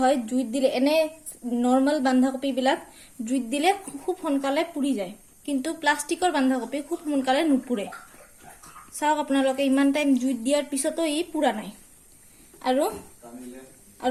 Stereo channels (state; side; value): identical; both; correlation 1.00